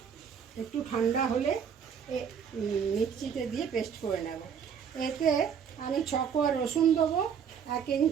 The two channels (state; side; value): quieter; left; 7.3 dB